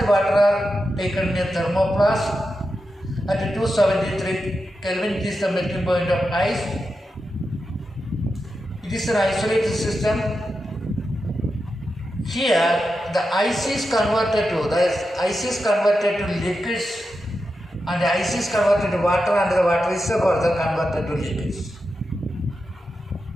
water are taken in a thermoplast at 273 Kelvin, it is the melting point of ice. It is an isolated system. Here the ice is converted to liquids and the ice is converted to water and the water is further converted to liquids.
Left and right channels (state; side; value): normal; both; correlation 0.89